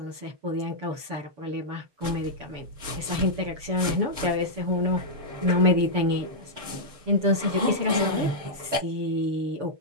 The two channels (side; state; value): left; late; 7.0 ms